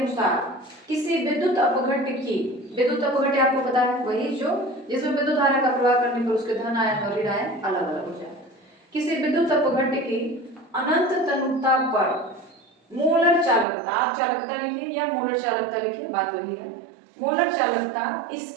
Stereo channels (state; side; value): drops out; left; at 13.7 s